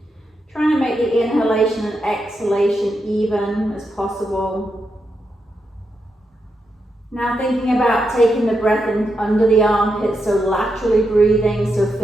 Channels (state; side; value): normal; both; correlation 0.84